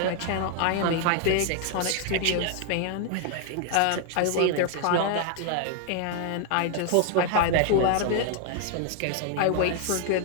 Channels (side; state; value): both; different; correlation 0.00